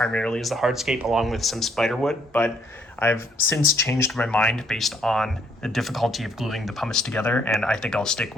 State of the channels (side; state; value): both; normal; correlation 0.68